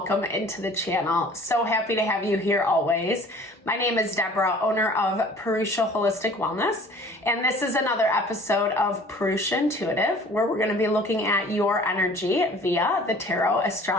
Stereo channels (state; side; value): normal; both; correlation 0.49